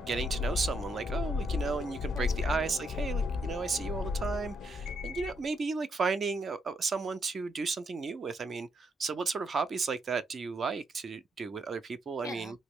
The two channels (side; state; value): both; normal; correlation 0.76